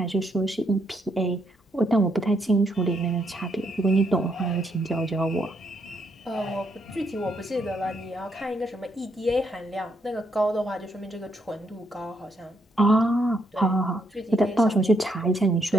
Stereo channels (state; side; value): normal; both; correlation 0.75